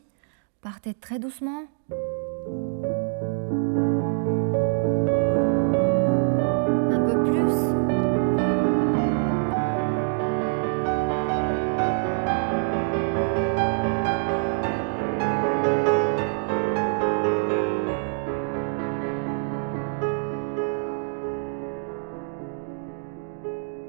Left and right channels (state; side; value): silent; left; digital silence